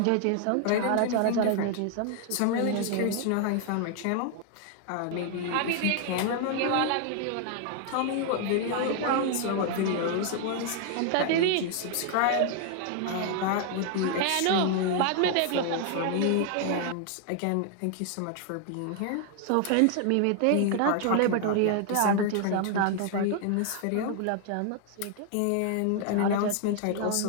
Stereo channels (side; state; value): both; different; correlation 0.00